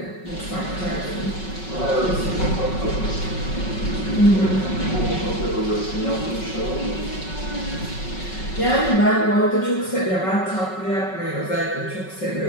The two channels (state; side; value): late; right; 5.4 ms